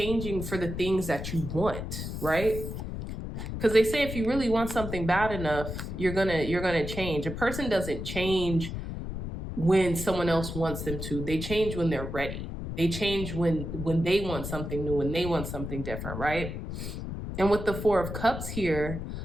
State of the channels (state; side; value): noise; left; rumble, 6 dB below the sound